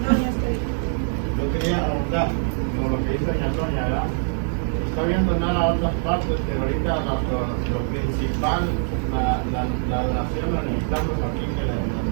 Yo quería preguntar, como lo que dice doña Antonia, ¿verdad? Está viendo nada a otras partes, pero ahorita lo principal, la donación la necesitamos aquí, que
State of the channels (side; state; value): left; silent; 63 dB below the other